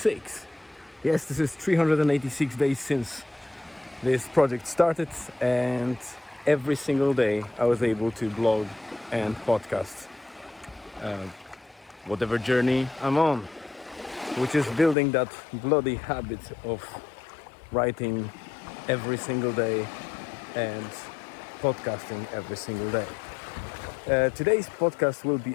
Yes, this is 386 days since this project started, and every single day I was able to blog and podcast whatever journey I'm on, which is building that bloody habit of writing every single day and podcasting every single day. Today's podcast will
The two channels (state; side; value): drops out; right; at 15.0 s